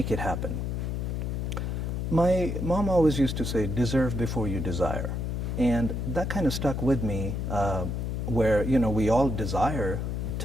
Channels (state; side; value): noise; left; hum, 2 dB below the sound